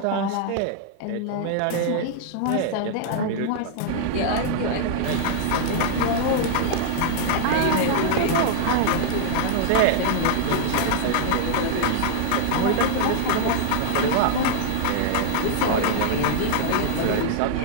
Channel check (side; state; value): both; different; correlation -0.01